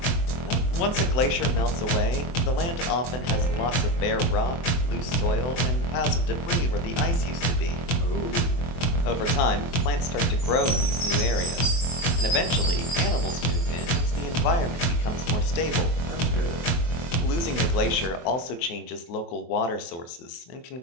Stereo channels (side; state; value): right; late; 24 ms